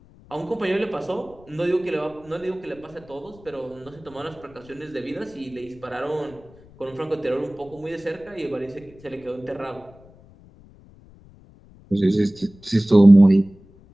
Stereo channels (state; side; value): noise; left; rumble, 24 dB below the sound